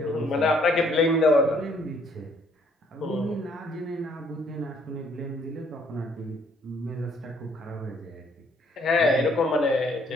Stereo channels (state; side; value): normal; both; correlation 0.64